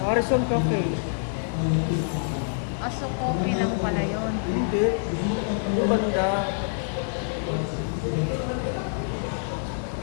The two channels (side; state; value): right; silent; 61 dB below the other